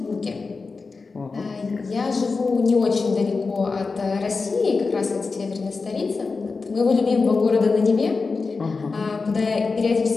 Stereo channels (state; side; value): quieter; right; 4.3 dB